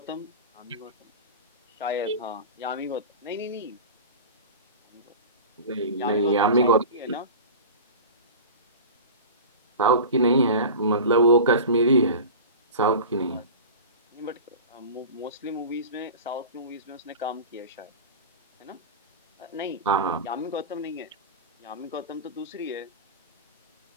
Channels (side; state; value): both; inverted; correlation -0.32